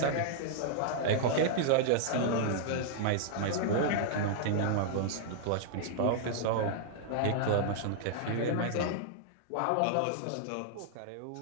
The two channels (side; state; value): both; different; correlation -0.01